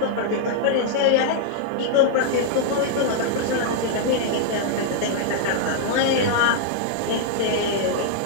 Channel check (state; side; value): different; both; correlation -0.01